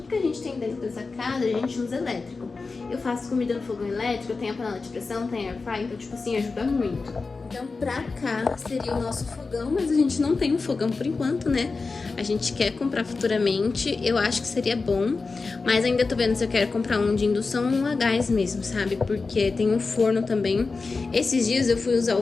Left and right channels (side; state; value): right; quieter; 4.1 dB